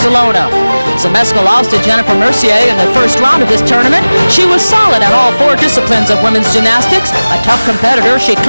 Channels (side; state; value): both; inverted; correlation -0.99